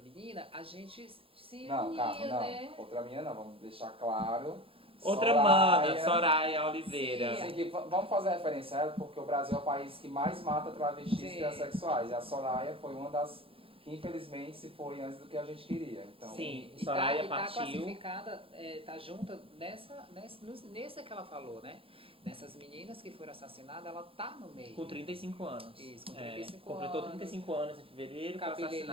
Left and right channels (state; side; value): late; left; 0.27 ms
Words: menina, a gente se Não, unia, calma, não. né? Outra menina não, vamos deixar claro. Outra mana, Soraya Oliveira. Sim, que vamos fazer referência a ela, porque o Brasil é o país que mais mata travestis e transexuais. E a Soraya foi uma das que, infelizmente, se foi antes do que a gente queria. Então, Sim, E Soraya tá partiu. classificada, tá junta nessa que ela falou, né? Nessas meninas que foram assassinadas, ela tá no meio. Com 35 anos. Isso, com 35 completou anos. 35 anos em fevereiro, foi